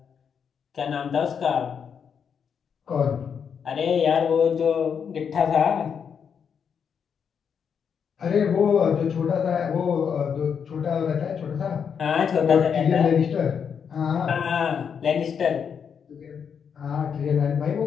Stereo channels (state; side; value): quieter; right; 7.1 dB